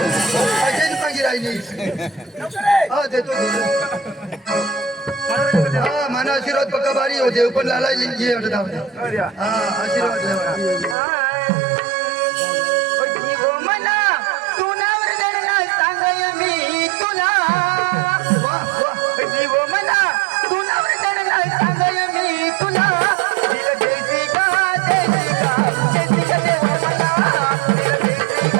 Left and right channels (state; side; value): drops out; left; at 11.0 s